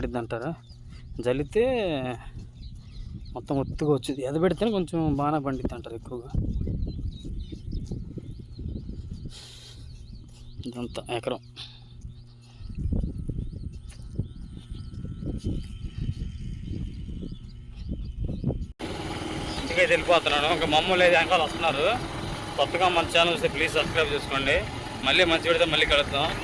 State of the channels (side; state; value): both; identical; correlation 1.00